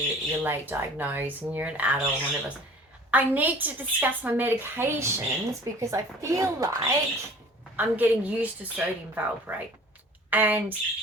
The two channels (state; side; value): normal; both; correlation 0.47